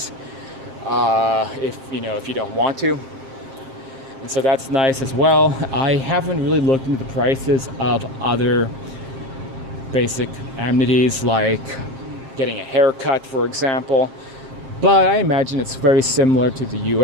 if you don't want to. And so that's nice as well. I haven't really looked into the prices of other basic amenities like getting a haircut, for example, but I imagine it's very similar to the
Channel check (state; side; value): late; left; 7.5 ms